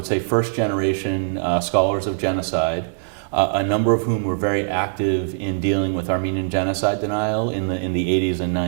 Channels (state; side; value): silent; left; digital silence